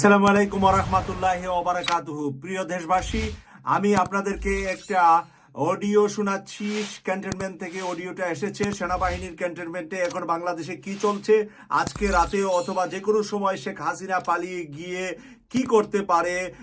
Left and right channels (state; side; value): identical; both; correlation 1.00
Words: আলাইকুম ওয়া রাহমাতুল্লাহি ওয়া বারাকাতুহু। প্রিয় দেশবাসী, আমি আপনাদেরকে একটা অডিও শোনাচ্ছি। ক্যান্টনমেন্ট থেকে অডিওটা এসেছে। সেনাবাহিনীর ক্যান্টনমেন্টে এখন বাংলাদেশে কি চলছে, আজকে রাতে অথবা যে কোনো সময় শেখ হাসিনা পালিয়ে গিয়ে কি করতে পারে,